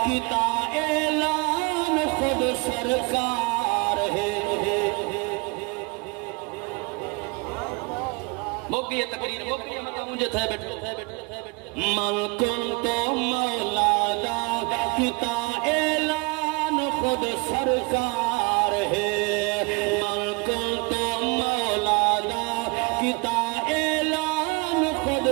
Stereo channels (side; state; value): left; quieter; 28.7 dB